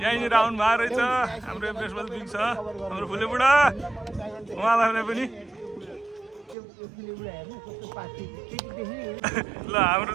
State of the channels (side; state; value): left; drops out; at 6.6 s